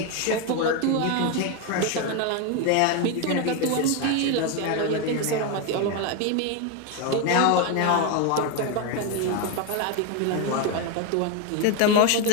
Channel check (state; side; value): different; both; correlation 0.02